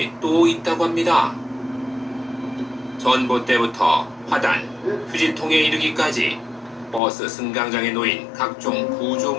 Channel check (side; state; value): right; drops out; at 7.0 s